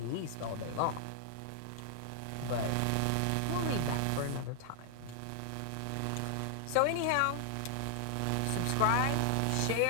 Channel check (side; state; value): both; different; correlation 0.00